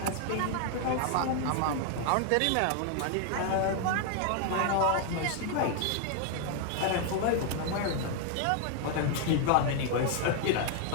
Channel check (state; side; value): different; both; correlation 0.00